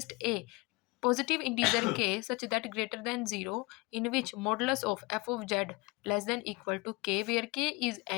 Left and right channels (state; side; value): quieter; right; 24.7 dB